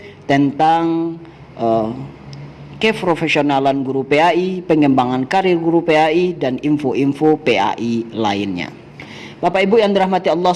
tentang keprofesionalan guru PAI, pengembangan karir guru PAI, dan info-info PAI lainnya. Bapak Ibu yang dirahmati Allah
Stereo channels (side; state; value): both; identical; correlation 1.00